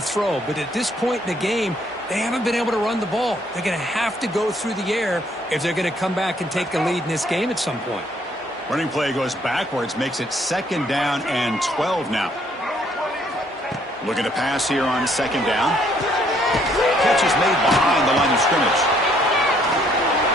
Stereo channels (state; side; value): normal; both; correlation 0.66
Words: throw. But at this point in the game, they haven't been able to run the ball. They're going to have to go through the air if they're going to come back and take the lead in this game at some point. Running play goes backwards, makes it 2nd down and 12 now. Looking to pass here on 2nd down. Catch is made behind the line of scrimmage.